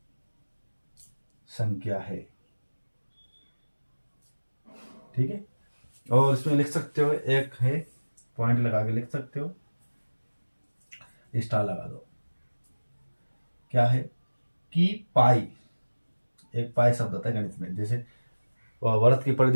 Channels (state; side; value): inverted; both; correlation -1.00